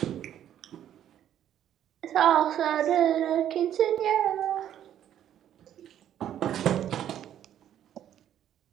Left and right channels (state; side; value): quieter; left; 10.7 dB